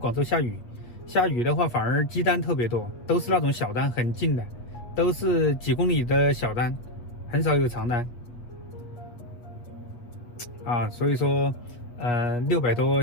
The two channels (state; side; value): late; right; 8.3 ms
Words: 州下雨的话反而积单特别多，都是那种小单很近的，都是几公里的小单，很少有长单啊。所以说600多